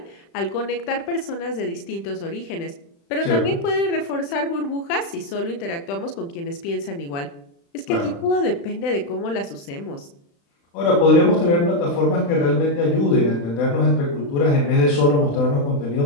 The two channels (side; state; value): right; late; 35 ms